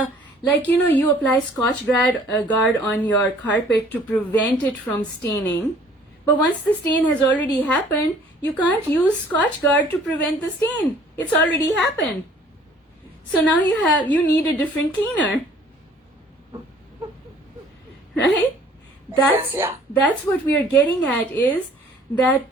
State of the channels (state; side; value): normal; both; correlation 0.55